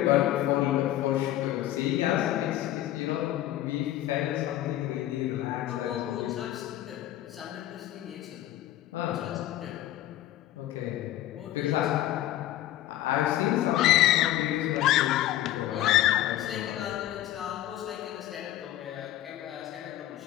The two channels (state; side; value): quieter; right; 13.9 dB